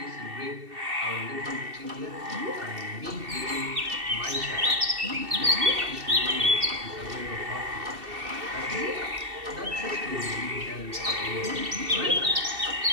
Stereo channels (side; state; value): left; late; 2.7 ms